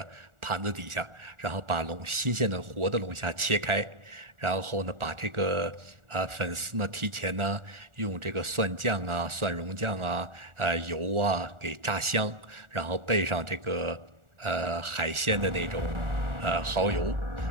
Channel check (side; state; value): left; late; 1.4 ms